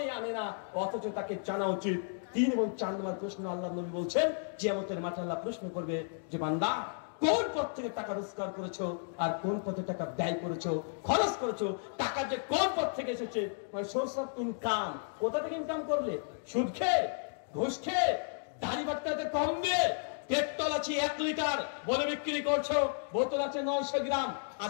আনে না, অথচ তাকে জানা উচিত। 3 এবং 4 নম্বর প্রশ্ন আল্লাহ নবী বলছেন, কিয়ামতের মাঠে আল্লাহ প্রশ্ন করবে যে বান্দা কোন পথ থেকে টাকা রোজগার করেছো, আর কোন পথে টাকা ব্যয় করেছো, খরচ করেছো। টাকা যে কোন পথ থেকে এসেছে, মানে সোর্স অফ ইনকাম, কোথা থেকে ইনকাম করলে? সুদ খেয়ে, ঘুষ খেয়ে, দাড়ি বাটকাতে কম দিয়ে, পেট্রোল আছে 1 লিটার বলে বিক্রি করছো, বোতল আছে 900 গ্রাম,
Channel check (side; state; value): right; silent; digital silence